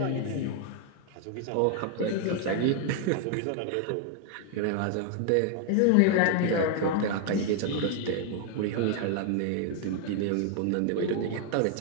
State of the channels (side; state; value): both; different; correlation 0.00